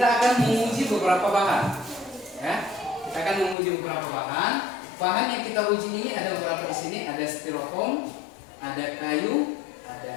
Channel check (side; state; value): right; drops out; at 3.6 s